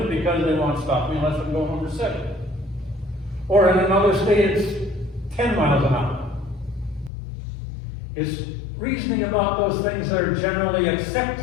because they won't stop me unless I'm going over 7. Or in another state, it's 10 miles an hour. It's reasoning about those things that are generally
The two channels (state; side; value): drops out; right; at 7.1 s